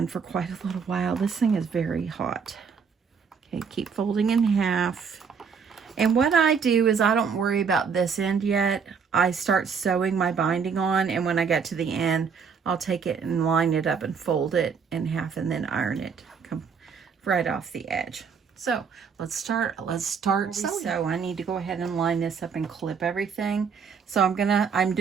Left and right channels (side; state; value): left; quieter; 6.1 dB